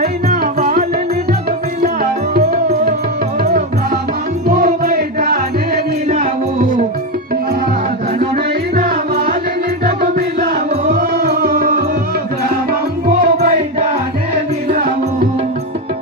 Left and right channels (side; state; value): both; normal; correlation 0.11